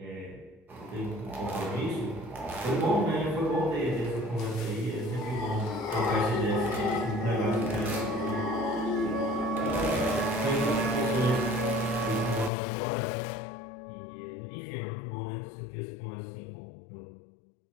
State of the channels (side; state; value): right; drops out; at 12.5 s